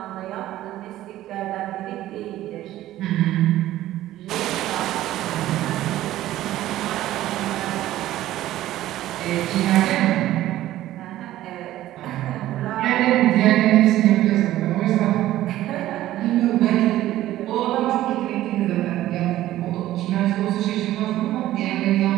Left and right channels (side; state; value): left; quieter; 14.4 dB